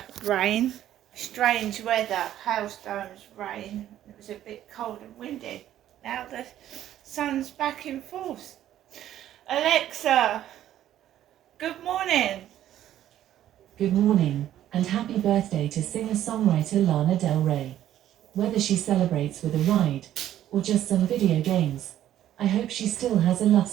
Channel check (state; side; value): quieter; left; 12.0 dB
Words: rain, strange weather, hailstones, rain. It was a bit cold and windy. Now the sun's back in force. Alexa, good morning. Good morning, and happy birthday to singer-songwriter Lana Del Rey. Whether she celebrates with a ride, or just some video games, I hope she still has a